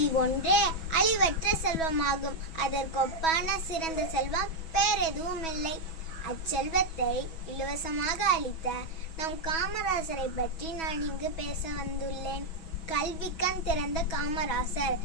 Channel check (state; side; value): late; right; 6.2 ms